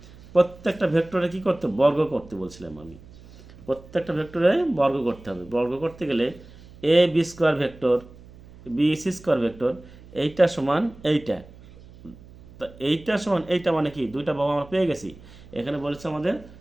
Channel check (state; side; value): noise; right; hum, 21 dB below the sound